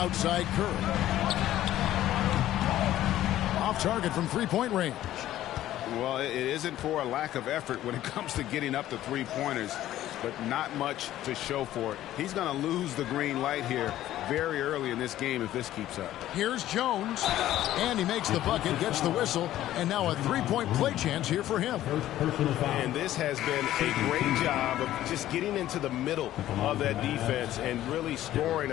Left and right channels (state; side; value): quieter; right; 13.5 dB